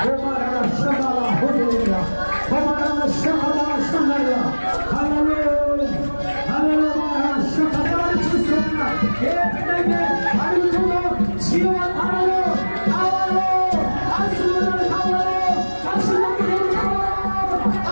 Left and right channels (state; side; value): inverted; both; correlation -1.00